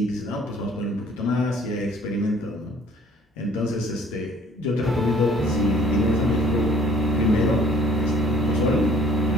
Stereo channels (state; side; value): normal; both; correlation 0.56